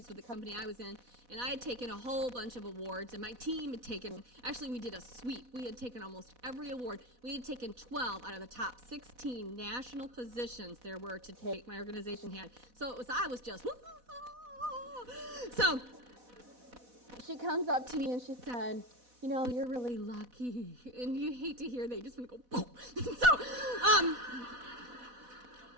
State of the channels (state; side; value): late; left; 4.1 ms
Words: with the company I was in. And I had taken a whole bunch of awards. And my team had taken, actually we did a sweep. We had taken almost every award. We had taken 12 out of the top 16 national positions there were to take, my organization had. So I was just, so she comes up to me and she said, you know, you're really lucky. And you hate to hear that. You just want to go, boom. So,